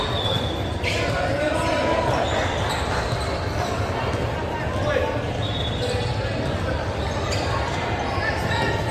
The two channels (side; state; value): both; identical; correlation 1.00